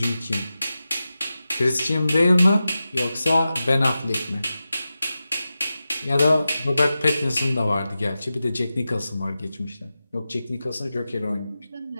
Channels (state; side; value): inverted; both; correlation -0.93